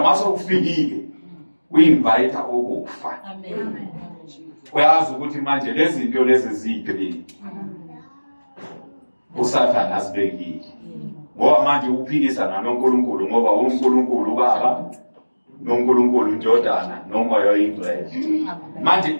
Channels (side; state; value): both; inverted; correlation -1.00